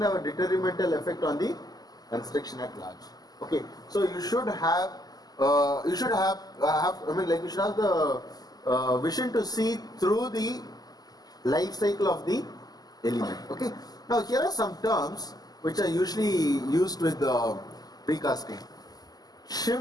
have a detrimental effect on the construction at large. Okay, so you should have you should have the vision to see through the life cycle of the element. Okay, now here are some terms which are usually used with precasting.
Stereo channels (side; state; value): right; late; 0.19 ms